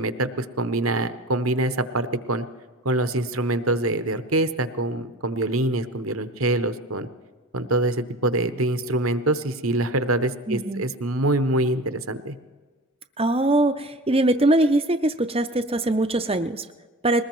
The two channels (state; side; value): normal; both; correlation 0.35